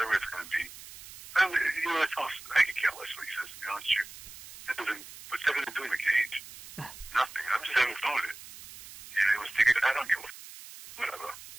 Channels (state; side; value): noise; right; hiss, 16 dB below the sound